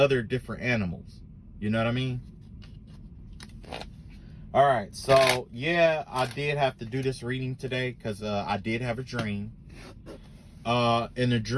different animals. You know what I mean? All right, so yeah, I did have to do this reading today because I did have a dream. In the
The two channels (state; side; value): identical; both; correlation 1.00